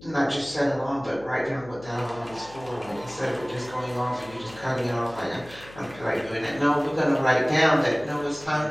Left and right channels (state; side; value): noise; left; hum, 20 dB below the sound